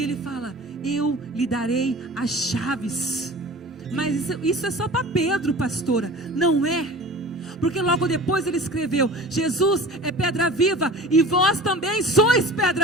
ele fala: eu lhe darei as chaves. Mas isso é só para Pedro, pastora. Não é. Porque logo depois ele escreveu: Jesus é pedra viva e vós também sois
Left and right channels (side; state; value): both; normal; correlation 0.39